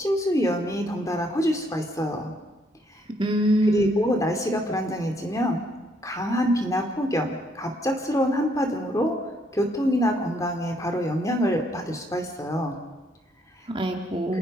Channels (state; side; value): normal; both; correlation 0.70